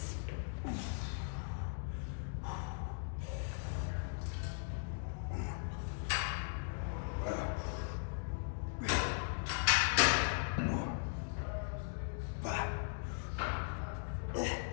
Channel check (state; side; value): silent; right; digital silence